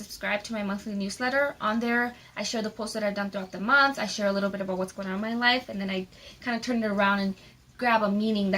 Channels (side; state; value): both; identical; correlation 1.00